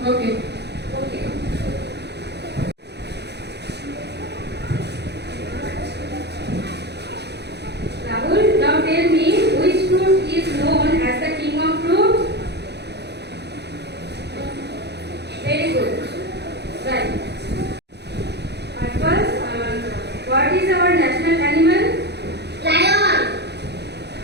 Okay. Okay. Rahul, now tell me which fruit is known as the king of fruits? Very good. Right. At first, what is our national animal? Lion.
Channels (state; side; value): late; left; 0.49 ms